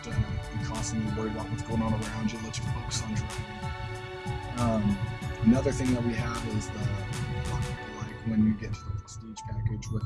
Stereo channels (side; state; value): both; identical; correlation 1.00